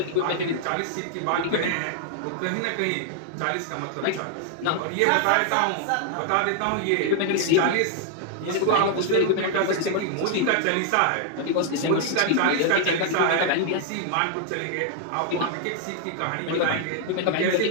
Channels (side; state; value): both; different; correlation 0.00